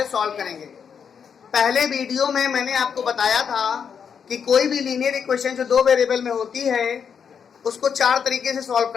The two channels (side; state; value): right; quieter; 7.1 dB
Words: सॉल्व करेंगे। पहले वीडियो में मैंने आपको बताया था कि कोई भी लीनियर इक्वेशन जो दो वेरिएबल में होती है उसको चार तरीके से सॉल्व